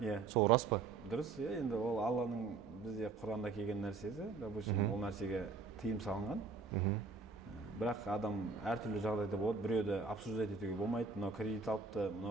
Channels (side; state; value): left; quieter; 4.4 dB